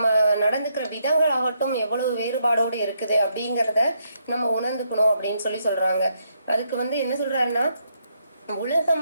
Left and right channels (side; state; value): both; inverted; correlation -0.76